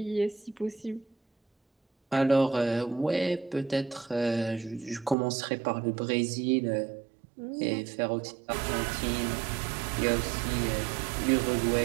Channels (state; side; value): drops out; left; at 5.2 s